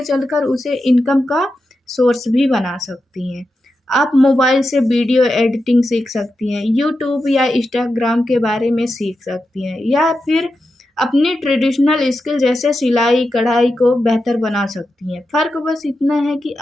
चलकर उसे इनकम का सोर्स भी बना सकती हैं। आप मोबाइल से वीडियो एडिटिंग सीख सकती हैं, यूट्यूब या इंस्टाग्राम के बारे में सीख सकती हैं, या फिर अपनी ट्रेडिशनल स्किल जैसे सिलाई, कढ़ाई को बेहतर बना सकती हैं। फ़र्क बस इतना है कि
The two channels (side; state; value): both; normal; correlation 0.89